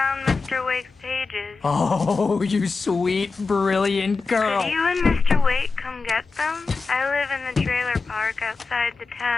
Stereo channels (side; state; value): right; quieter; 4.3 dB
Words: Mr. Wake's pages. Oh, you sweet, brilliant girl. Could you and Mr. Wake come get them? I live in the trailer park outside the